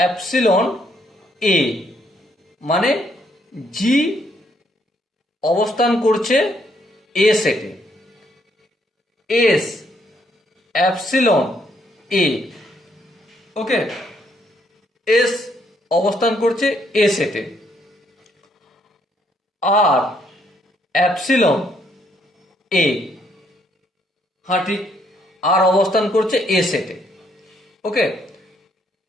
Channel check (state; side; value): normal; both; correlation 0.71